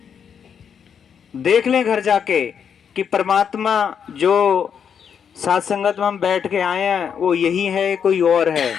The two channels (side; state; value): right; quieter; 7.5 dB